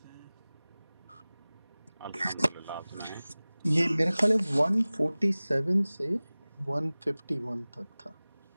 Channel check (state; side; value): inverted; both; correlation -0.99